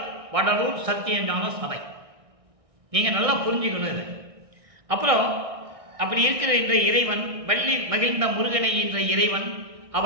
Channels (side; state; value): left; late; 1.6 ms